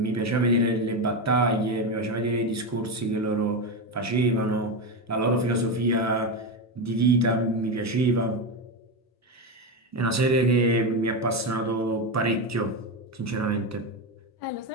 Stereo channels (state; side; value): normal; both; correlation 0.13